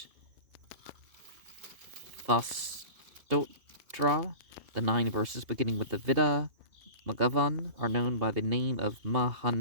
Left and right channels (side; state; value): left; late; 2.4 ms